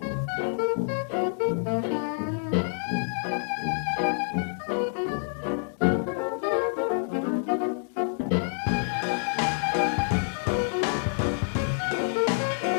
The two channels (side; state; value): right; silent; 60 dB below the other